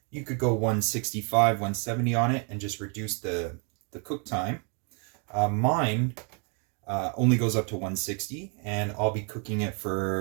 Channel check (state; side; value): quieter; left; 37.3 dB